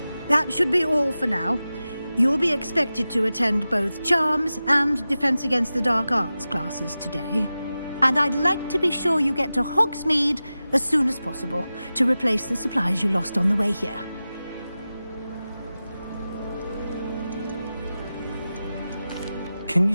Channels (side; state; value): both; inverted; correlation -0.94